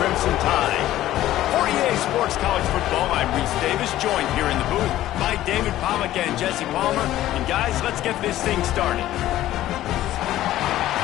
Tide. For EA Sports College Football, I'm Reese Davis, joined here in the booth by David Pollack and Jesse Palmer. And guys, let's get this thing started.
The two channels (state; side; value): quieter; right; 14.1 dB